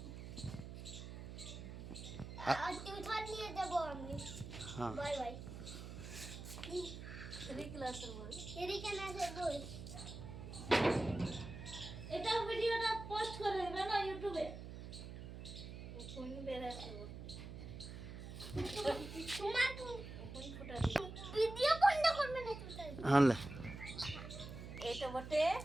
আর টিউশন নিয়ে দেবো আমি হ্যাঁ বাই বাই 3 ক্লাসের বই এদিকে না সে বই এটা ভিডিওটা পোস্ট করে দেবে না ইউটিউবে কোন বেরাছে তোমার কোন ফুটা ভিডিও বন্ধ করবে না তুমি হ্যাঁ এটা বটে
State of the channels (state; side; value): noise; right; hum, 10 dB below the sound